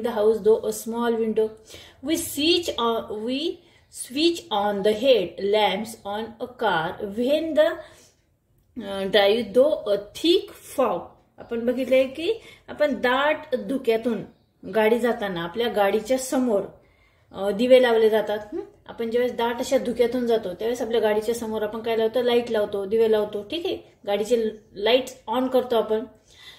the house through a small window we switch on the head lamps on a car when the drive through a thick fog. आपण बघितलंय की आपण दाट धुक्यातून गाडी जाताना आपल्या गाडीच्या समोर दिवे लावले जातात। आपण ज्यावेळेस दाट अशा धुक्यातून जातो त्यावेळेस आपल्या गाडीच्या समोर आपण काय लावतो, लाईट लावतो, दिवे लावतो। ठीक आहे, गाडीचे लाईट ऑन करतो आपण,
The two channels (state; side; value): identical; both; correlation 1.00